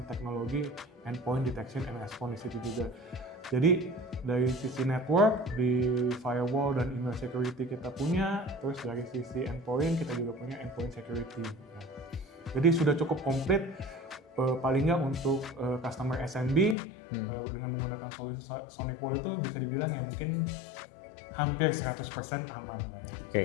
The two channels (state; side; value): drops out; right; at 16.8 s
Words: teknologi endpoint detection and response di situ juga. Jadi dari sisi network, di firewall dan email security kita punya, terus dari sisi endpoint kita juga punya endpoint security. Ya. Jadi sudah cukup komplit paling nggak untuk customer SMB dengan menggunakan solusi SonicWall itu bisa dibilang ya mungkin hampir 100% aman lah ya. Oke,